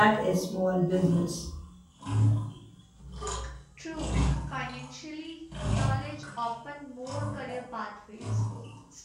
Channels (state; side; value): identical; both; correlation 1.00